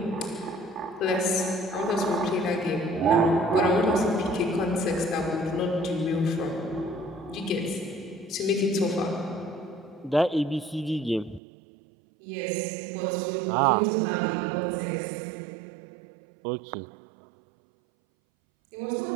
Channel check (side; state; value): left; drops out; at 11.4 s